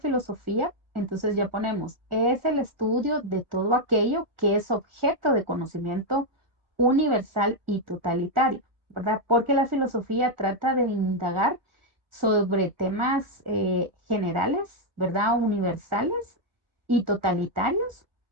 entonces ya ponemos, es el estudio de todo aquello que es objeto de conocimiento universal y totalitario, ¿verdad? Porque la filosofía trata de indagar sobre temas generales, ¿verdad? Universales y totalitarios,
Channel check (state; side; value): late; left; 1.4 ms